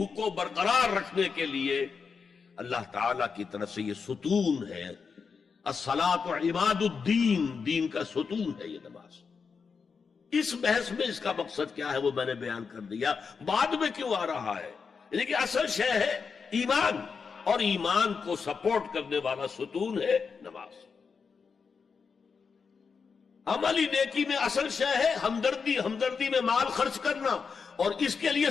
کو برقرار رکھنے کے لیے اللہ تعالی کی طرف سے یہ ستون ہے. الصلاۃ عماد الدین، دین کا ستون ہے یہ نماز. اس بحث میں اس کا مقصد کیا ہے وہ میں نے بیان کر دیا. بعد میں کیوں آ رہا ہے؟ یعنی کہ اصل شے ہے ایمان، اور ایمان کو سپورٹ کرنے والا ستون ہے نماز. عملی نیکی میں اصل شے ہے ہمدردی، ہمدردی میں مال خرچ کرنا، اور اس کے لیے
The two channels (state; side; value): quieter; right; 5.5 dB